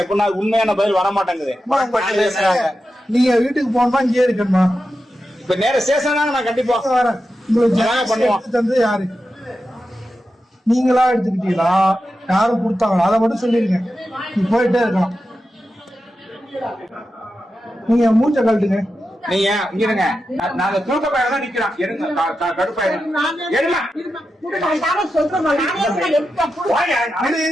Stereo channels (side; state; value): both; normal; correlation 0.90